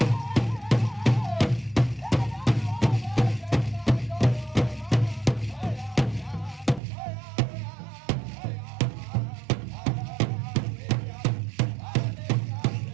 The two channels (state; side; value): drops out; left; at 6.8 s